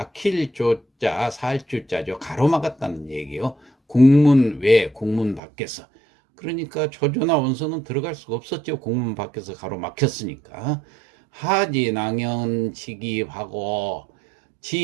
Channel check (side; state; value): left; drops out; at 5.4 s